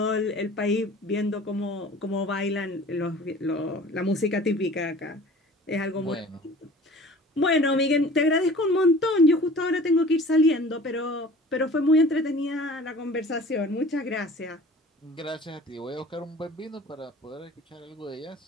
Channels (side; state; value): both; normal; correlation 0.45